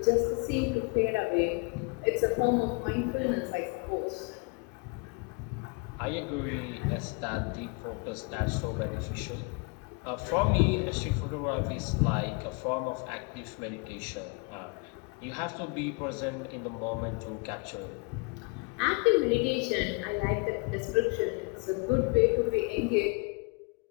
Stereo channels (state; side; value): quieter; right; 31.2 dB